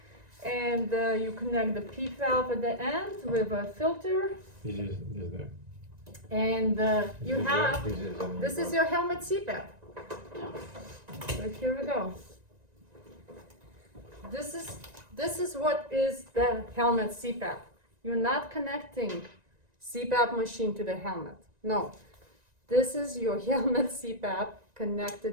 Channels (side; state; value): left; late; 1.9 ms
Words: and you connect the P valve at the end with a filter, This is there. and you have. This is your helmet Cpap. Yeah. So here we go. This is what is the helmet Cpap. You're not connecting Cpap machine to the helmet. No. This is your helmet Cpap